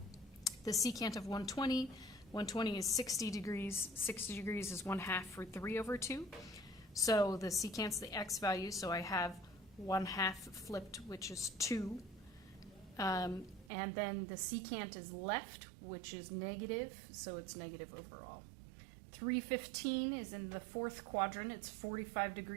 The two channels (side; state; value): left; drops out; at 13.7 s